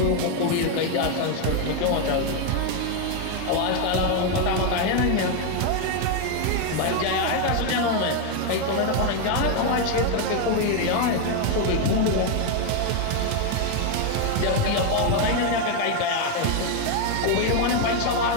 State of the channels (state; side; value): different; both; correlation 0.01